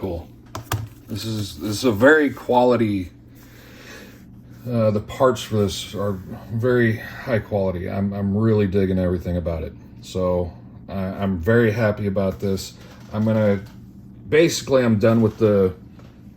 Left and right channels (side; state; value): both; identical; correlation 1.00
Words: This is a very quality. The parts for this are very high quality. I'm really digging everything about it. So I'm very happy about this. I'm done with the